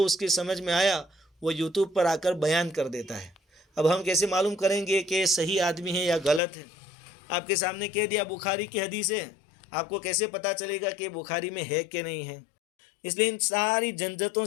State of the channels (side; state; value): right; drops out; at 6.4 s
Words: اس کی سمجھ میں آیا، وہ یوٹیوب پر آ کر بیان کر دیتا ہے۔ اب ہم کیسے معلوم کریں گے کہ صحیح آدمی ہے یا غلط ہے؟ آپ کے سامنے کہہ دیا بخاری کی حدیث ہے، آپ کو کیسے پتہ چلے گا کہ بخاری میں ہے کہ نہیں ہے؟ اس لیے ان ساری جھنجھٹوں